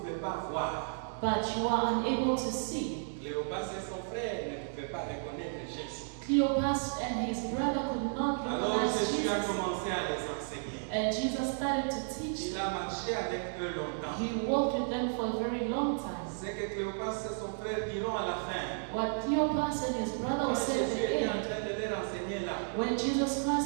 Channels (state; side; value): silent; left; 56 dB below the other